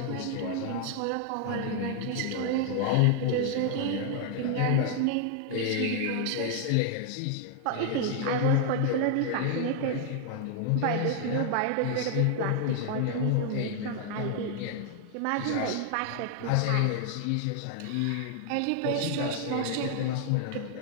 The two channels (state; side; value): different; both; correlation 0.00